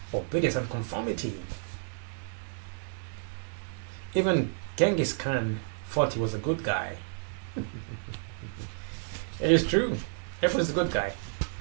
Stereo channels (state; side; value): silent; left; 57 dB below the other